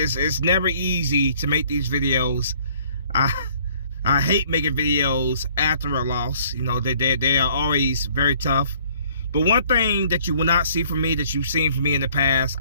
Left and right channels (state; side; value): inverted; both; correlation -0.59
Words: never easy to make these videos. I hate making videos after a loss. You know, they are always very tough. But one thing that you will not see from me, that you've seen from me in the past,